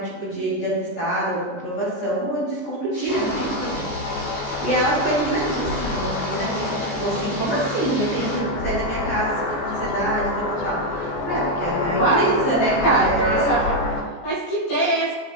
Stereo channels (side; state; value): right; late; 17 ms